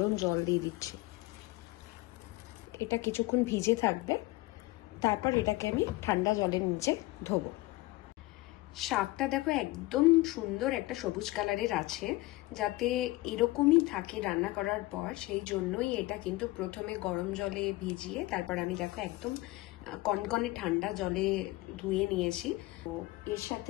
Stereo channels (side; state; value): right; quieter; 20.0 dB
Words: জল দিয়ে দিচ্ছি। এটা কিছুক্ষণ ভিজে থাকবে, তারপর এটাকে আমি ঠান্ডা জলের নিচে ধোবো। শাকটা দেখো একদম সুন্দর একটা সবুজ কালারের আছে, যাতে এরকমই থাকে রান্না করার পর, সেই জন্যই এটা কিন্তু প্রথমে গরম জলে ভিজিয়ে তারপর আমি দেখো একদম কনকনে ঠান্ডা জলে ধুয়ে নিয়েছি। তো এর